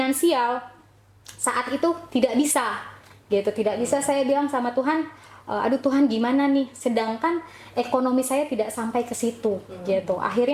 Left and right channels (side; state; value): both; identical; correlation 1.00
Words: saat itu tidak bisa gitu. Tidak bisa. Saya bilang sama Tuhan, aduh Tuhan gimana nih? Sedangkan ekonomi saya tidak sampai ke situ gitu.